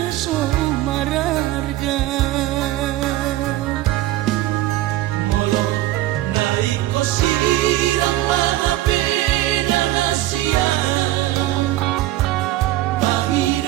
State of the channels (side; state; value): left; quieter; 15.6 dB